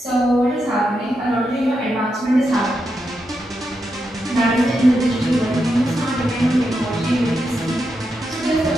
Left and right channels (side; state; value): both; normal; correlation 0.85